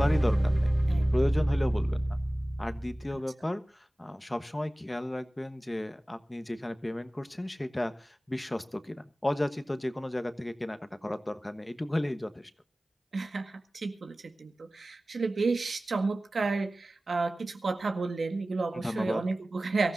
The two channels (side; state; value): both; normal; correlation 0.97